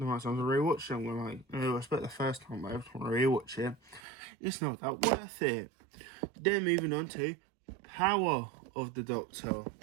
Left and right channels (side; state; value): left; drops out; at 4.0 s